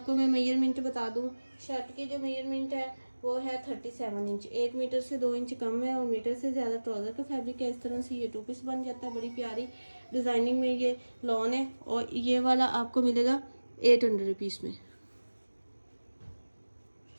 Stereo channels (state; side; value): inverted; both; correlation -1.00